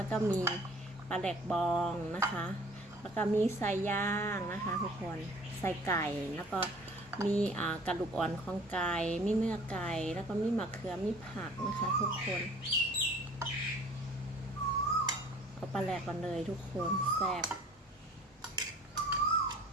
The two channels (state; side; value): normal; both; correlation 0.50